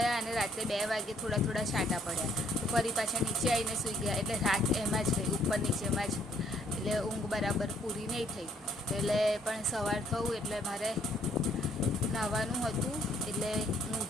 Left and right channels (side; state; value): both; normal; correlation 0.65